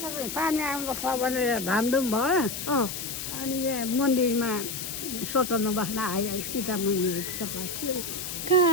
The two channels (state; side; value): noise; left; hiss, 6 dB below the sound